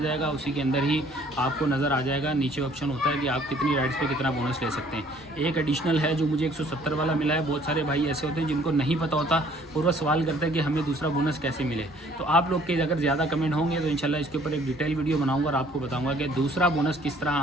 जाएगा, उसी के अंदर ही आपको नज़र आ जाएगा। नीचे ऑप्शन होता है कि आप कितनी राइड्स पे कितना बोनस ले सकते हैं। एक एडिशनल है जो मुझे 170 वाला मिला है। बहुत सारे भाई ऐसे होते हैं जिनको नहीं पता होता और वह सवाल करते हैं कि हमें दूसरा बोनस कैसे मिले। तो आप लोग के अगर ज़्यादा कमेंट होंगे तो इंशाल्लाह इसके ऊपर एक डिटेल वीडियो बनाऊँगा और आपको बताऊँगा कि दूसरा बोनस किस तरह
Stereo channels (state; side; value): normal; both; correlation 0.58